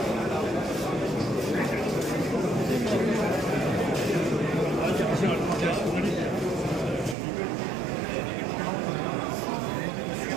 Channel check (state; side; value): drops out; left; at 7.2 s